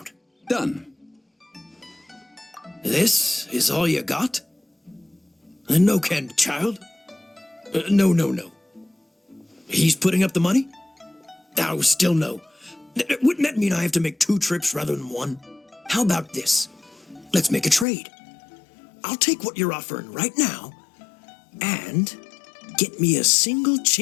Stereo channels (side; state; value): right; drops out; at 17.9 s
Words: Done. This is all you got? No can, child? No. He's putting up the money? Oh, still no. Wouldn't that mean I have to make 2 trips rather than 1? How about this? Let's make a trade. I'll take what you're offering right now, and get me a single